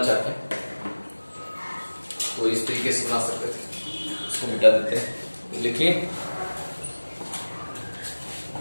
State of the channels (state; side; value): inverted; both; correlation -1.00